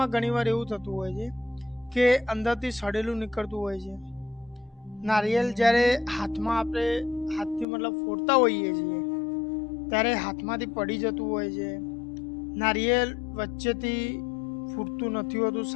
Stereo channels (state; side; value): drops out; right; at 7.7 s